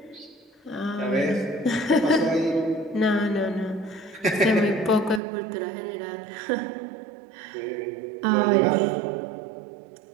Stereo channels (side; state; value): left; drops out; at 5.2 s